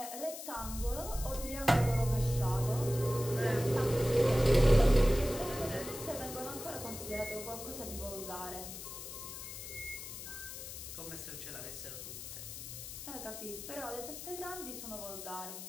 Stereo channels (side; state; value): left; noise; hiss, 10 dB below the sound